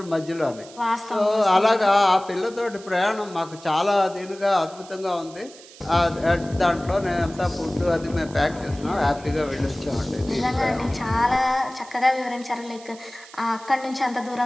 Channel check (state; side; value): noise; right; hiss, 20 dB below the sound